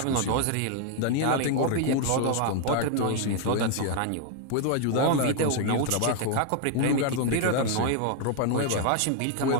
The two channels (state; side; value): different; both; correlation 0.00